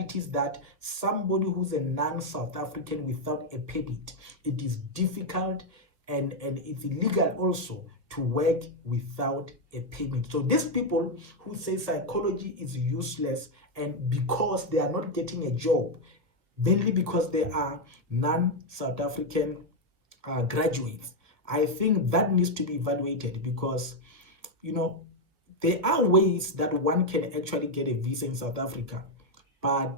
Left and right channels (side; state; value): left; late; 1.6 ms